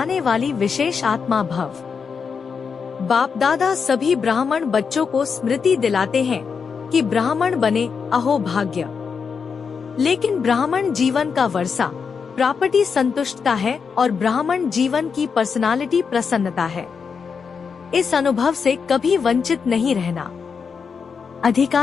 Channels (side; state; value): right; quieter; 5.9 dB